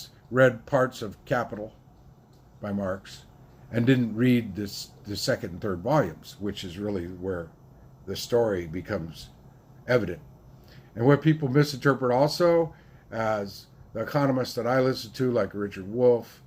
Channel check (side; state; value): both; identical; correlation 1.00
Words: read parts of Capital by Marx and didn't read the second and third volumes, which is really where the story becomes evident. And what people misinterpret also, as the economists that I listen to, like Richard Wolff,